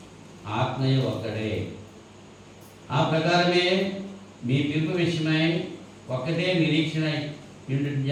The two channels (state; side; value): identical; both; correlation 1.00